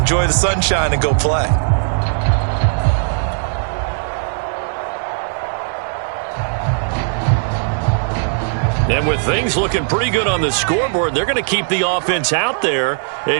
the sunshine, and go play. And with things looking pretty good on the scoreboard, they're going to keep the offense out there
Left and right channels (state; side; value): silent; left; digital silence